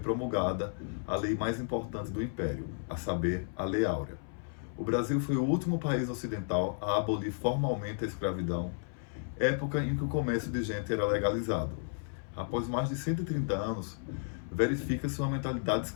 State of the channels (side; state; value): right; silent; 56 dB below the other